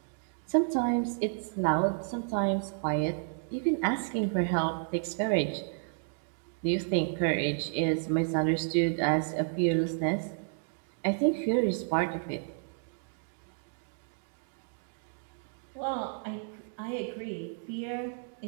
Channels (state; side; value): silent; left; digital silence